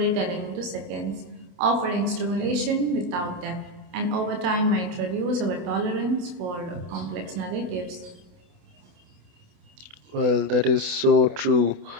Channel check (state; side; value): late; left; 28 ms